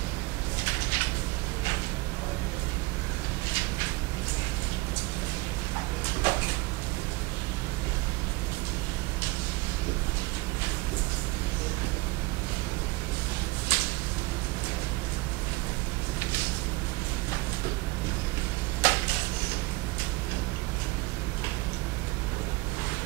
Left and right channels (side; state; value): left; quieter; 22.9 dB